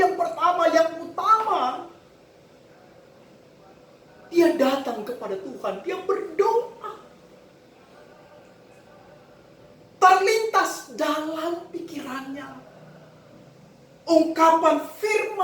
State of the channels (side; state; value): both; identical; correlation 1.00